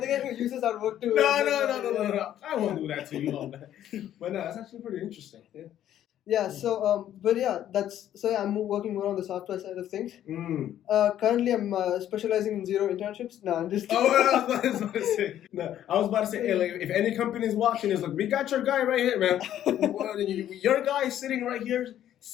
the guy who uses our work to. No. I won't do that to you all that. But no, that's actually pretty interesting. Yeah, so I'm working more on the software side of things. Currently, I'm specializing in zero internships. No, I'm just. I was about to say, hey, like, if any company is watching, it's like, we got your guy right here, man. Your guy is sitting right here,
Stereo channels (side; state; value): right; quieter; 11.4 dB